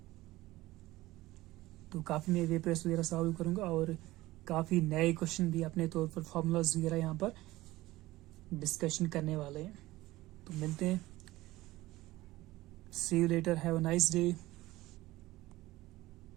तो काफ़ी मैं वे प्रेस वगैरह सॉल्व करूँगा और काफ़ी नए क्वेश्चन भी अपने तौर पर फॉर्मूलाज वगैरह यहाँ पर डिस्कशन करने वाले हैं। तो मिलते हैं, see you later, have a nice day.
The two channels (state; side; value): quieter; left; 17.9 dB